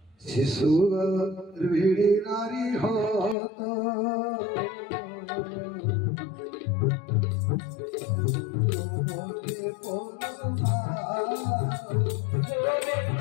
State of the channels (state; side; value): drops out; right; at 3.4 s